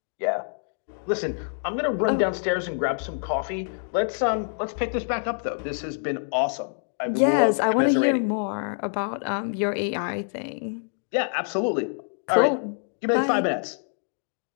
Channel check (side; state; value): right; silent; digital silence